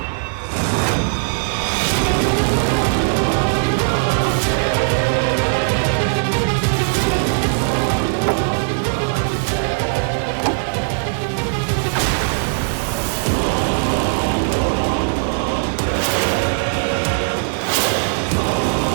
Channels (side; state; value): left; silent; digital silence